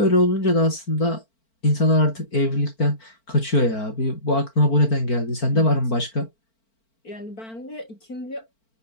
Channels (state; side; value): late; right; 4.4 ms